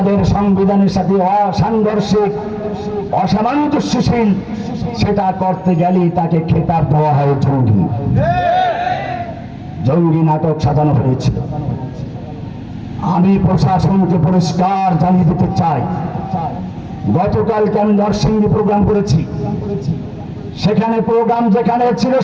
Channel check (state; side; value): identical; both; correlation 1.00